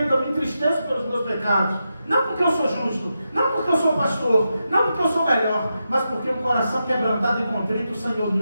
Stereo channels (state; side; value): inverted; both; correlation -0.88